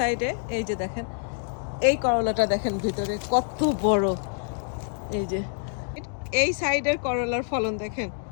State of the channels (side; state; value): right; silent; digital silence